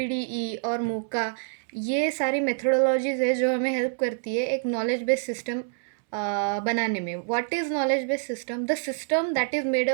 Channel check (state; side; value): silent; left; 61 dB below the other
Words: और मूका, ये सारी मेथोडोलॉजीज है जो हमें हेल्प करती है एक नॉलेज बेस्ड सिस्टम बनाने में. What is knowledge based system? The system that is made